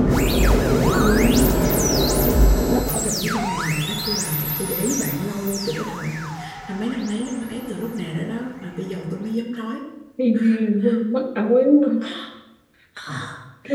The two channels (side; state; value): both; identical; correlation 1.00